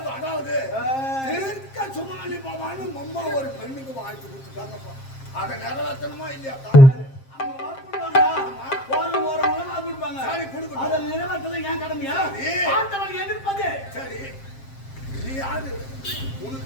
அதாவது தீர்க்க சுமானி பவான்னு அம்மா ஒரு பெண்ணுக்கு வாழ்த்து கொடுத்துட்டாங்கப்பா. அதை நிறைவேற்றணுமா இல்லையா? எதிர்ப்பது சரி. நீ யாரு?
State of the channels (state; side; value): late; right; 7.5 ms